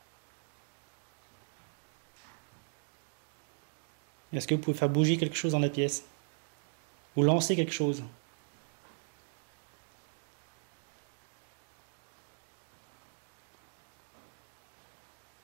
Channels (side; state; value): left; silent; digital silence